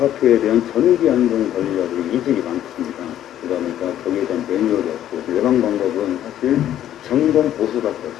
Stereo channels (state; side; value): quieter; right; 11.6 dB